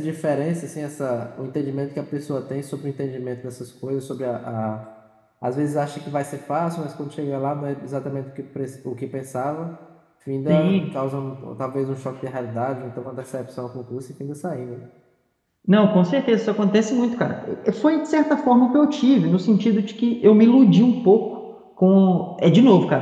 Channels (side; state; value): both; identical; correlation 1.00